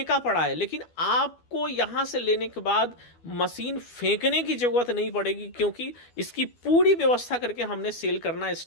पड़ा है। लेकिन आपको यहाँ से लेने के बाद मशीन फेंकने की ज़रूरत नहीं पड़ेगी, क्योंकि इसकी पूरी व्यवस्था करके हमने सेल करना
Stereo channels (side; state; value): right; late; 12 ms